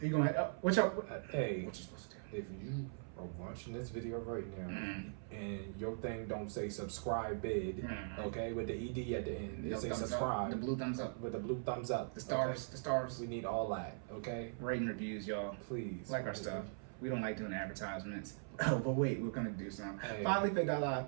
you going to... what you supposed to do? If you are watching this video right now and your thing don't say subscribe bid, okay, with the ED at the end, it say subscribe. The blue thumbs up. With the blue thumbs up. The stars. Okay? The stars. We need all that, okay? Rating reviews, y'all. Please. Like our stuff. We don't like doing advertisements. Oh, but wait, we're gonna do some. Hey. FinallyFit.live.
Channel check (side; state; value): left; silent; 50 dB below the other